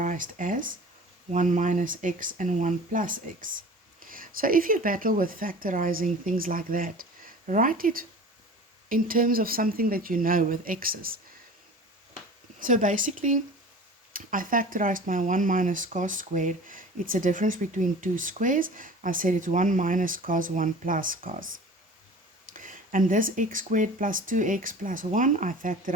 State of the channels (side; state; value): both; normal; correlation 0.40